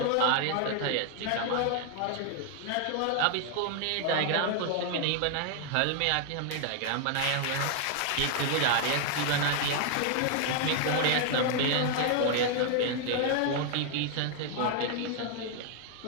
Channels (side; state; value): both; different; correlation 0.00